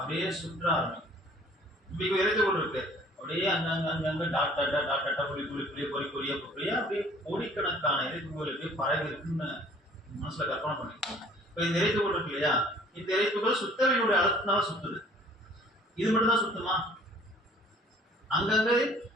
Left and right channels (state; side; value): normal; both; correlation 0.53